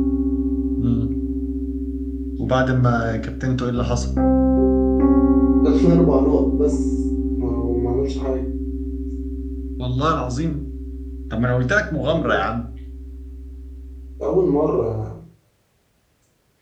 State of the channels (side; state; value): both; identical; correlation 1.00